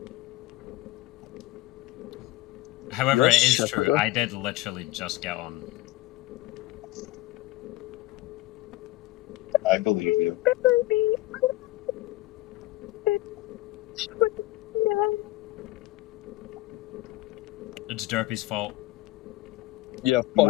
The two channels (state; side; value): quieter; right; 18.2 dB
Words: However, it is true, I did literally just get on. I believe you. It's Derpy's fault. Yeah, fuck